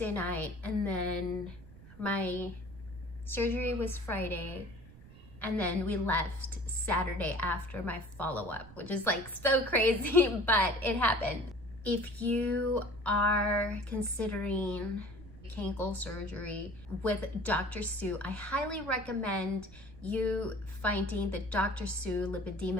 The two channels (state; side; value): noise; right; rumble, 19 dB below the sound